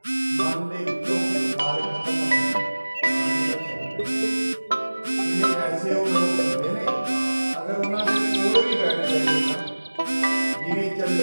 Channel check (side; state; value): both; inverted; correlation -1.00